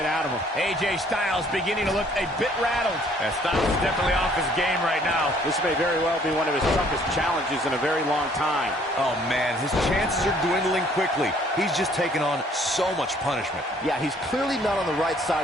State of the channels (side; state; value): both; normal; correlation 0.60